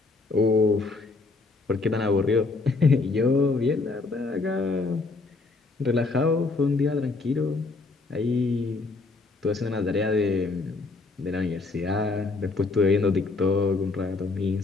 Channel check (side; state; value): right; quieter; 3.7 dB